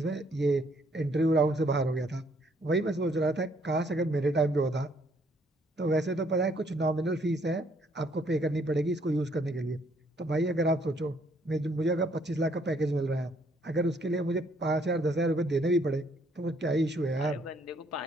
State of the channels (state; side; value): normal; both; correlation 0.67